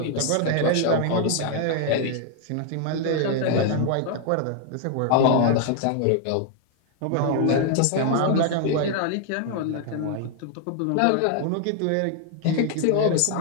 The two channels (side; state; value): both; different; correlation 0.00